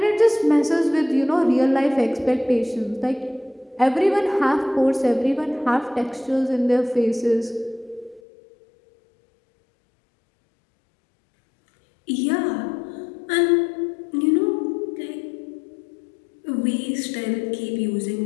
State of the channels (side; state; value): right; drops out; at 8.2 s